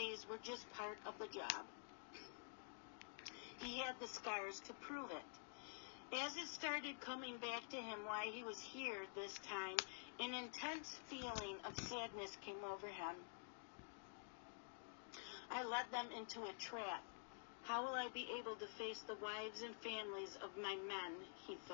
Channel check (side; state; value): right; silent; digital silence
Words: were just part of the job. He had the scars to prove it. As it started coming back to him why he was here this time, an intense feeling of sadness came over him. I led them into a trap. How will I be able to face the wives and families of my men, he